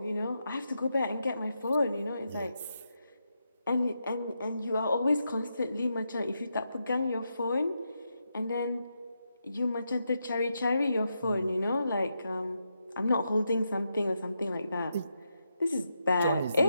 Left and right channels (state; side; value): inverted; both; correlation -0.84